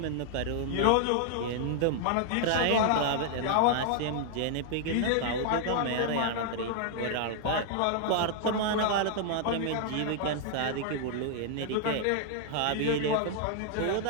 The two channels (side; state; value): both; different; correlation 0.00